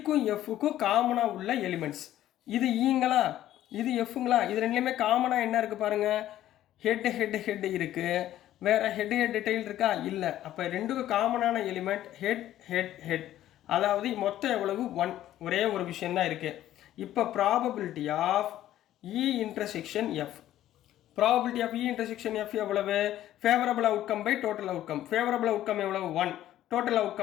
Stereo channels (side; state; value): right; quieter; 13.0 dB